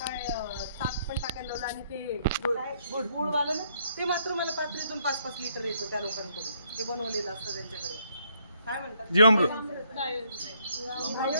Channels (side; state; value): both; inverted; correlation -0.70